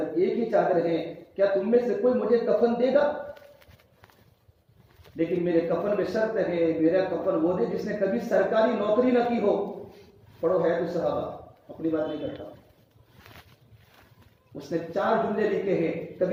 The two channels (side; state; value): both; identical; correlation 1.00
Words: ایک ہی چادر ہے، کیا تم میں سے کوئی مجھے کفن دے گا؟ لیکن میرے کفن میں شرط ہے، میرا کفن وہ دے جس نے کبھی سرکاری نوکری نہ کی ہو۔ پڑھو ہے تو صحابہ، اپنی بات نہیں کرتا۔ اس نے 4 جملے لکھے ہیں،